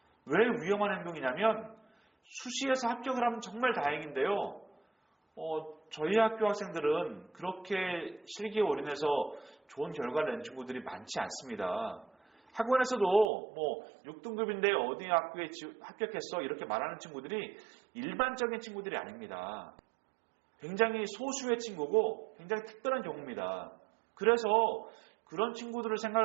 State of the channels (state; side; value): drops out; left; at 13.3 s